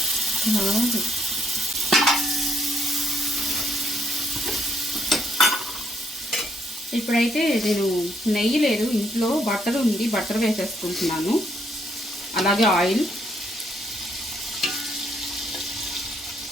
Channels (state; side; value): normal; both; correlation 0.71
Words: ఇప్పుడైతే నేను నెయ్యి లేదు ఇంట్లో, బటర్ ఉంది, బటర్ వేసేసుకుంటున్నాను. అలాగే ఆయిల్,